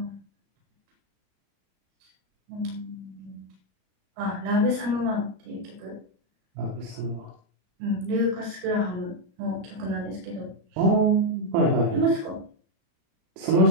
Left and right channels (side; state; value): left; late; 34 ms